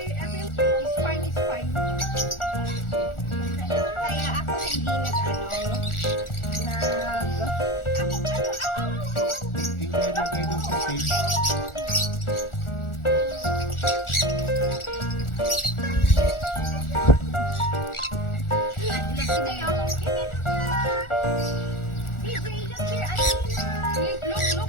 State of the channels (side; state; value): right; late; 1.4 ms